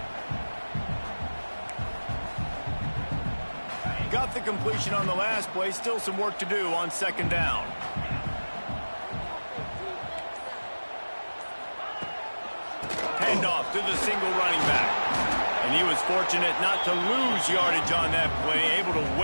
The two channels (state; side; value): inverted; both; correlation -1.00